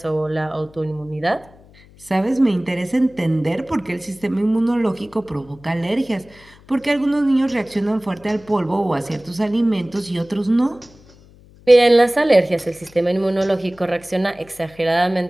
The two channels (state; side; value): noise; left; hum, 25 dB below the sound